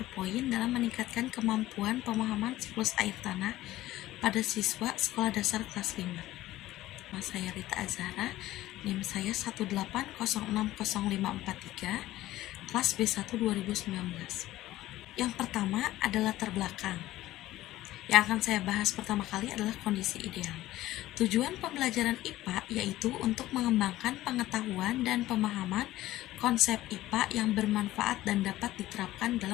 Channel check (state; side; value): quieter; right; 15.7 dB